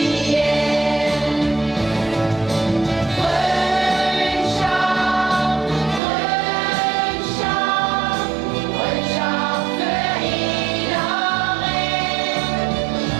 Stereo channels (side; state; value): left; drops out; at 6.0 s